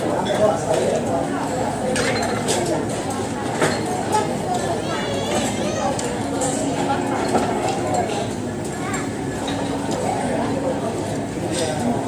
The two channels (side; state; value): both; identical; correlation 1.00